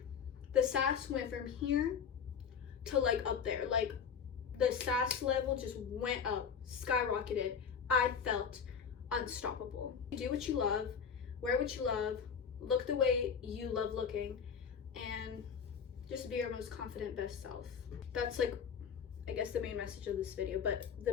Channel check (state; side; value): quieter; right; 6.8 dB